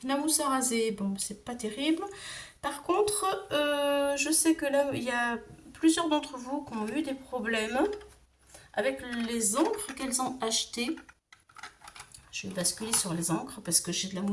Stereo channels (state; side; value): identical; both; correlation 1.00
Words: la mousse à raser, bon, c'est pas terrible. Par contre, je sais que là, il y a plusieurs d'entre vous qui ont eu des problèmes avec les encres qu'elles ont achetées. Je vais basculer sur les encres parce que j'ai de la